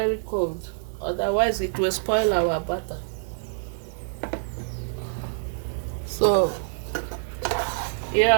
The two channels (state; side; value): silent; left; digital silence